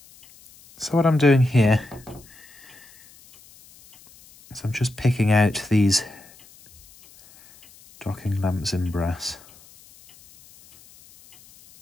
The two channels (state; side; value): noise; left; hiss, 25 dB below the sound